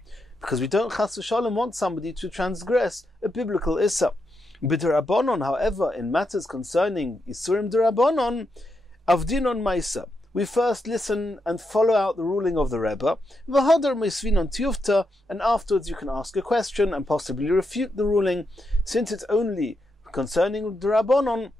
Because we don't chas v'shalom want somebody to transgress a biblical issa. B'derabonon, however, in matters concerning Isurim derabonon, avdinon maisa, we first listen and follow out the ruling of the Rebbe, v'hadar meisvinon tiyufta, and afterwards you can ask a question and possibly refute the ruling. Since it's only concerning the Rabbanon,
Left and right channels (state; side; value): normal; both; correlation 0.84